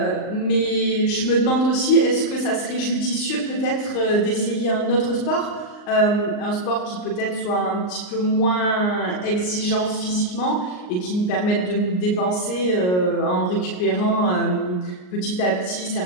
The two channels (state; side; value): late; right; 39 ms